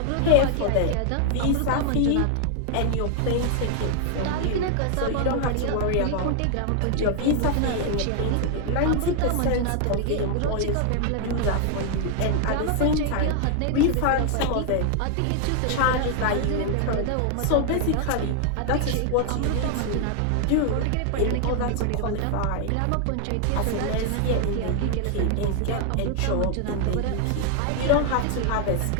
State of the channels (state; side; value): different; both; correlation 0.00